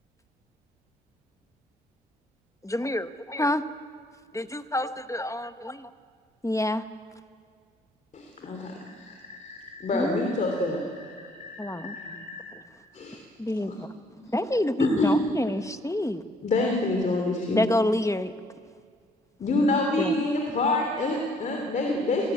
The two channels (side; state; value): both; normal; correlation 0.63